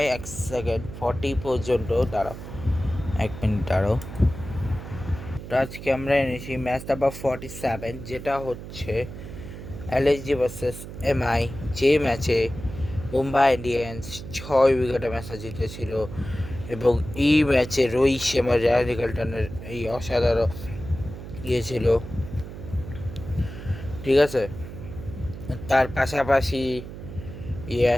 1 সেকেন্ড 40 পর্যন্ত দাঁড়াও, 1 মিনিট দাঁড়াও। তো আজকে আমরা এনেছি ম্যাচ নাম্বার 47, যেটা হচ্ছে এলএসজি ভার্সেস এমআই, যে ম্যাচে মুম্বাই ইন্ডিয়ান্স 6 উইকেটে ম্যাচটা জিতেছিল। এবং এই ম্যাচে রোহিত শর্মা, রায়ান নিকলটনের এই অসাধারণ ছিল। ঠিক আছে, তার পাশাপাশি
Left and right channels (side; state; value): right; noise; hum, 11 dB below the sound